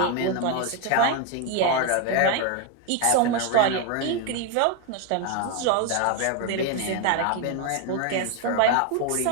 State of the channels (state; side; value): different; both; correlation 0.01